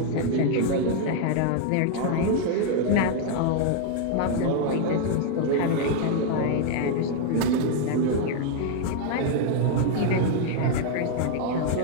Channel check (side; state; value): both; different; correlation 0.00